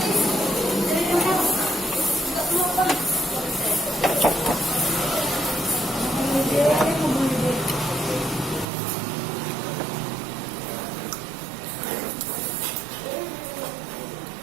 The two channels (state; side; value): drops out; left; at 8.7 s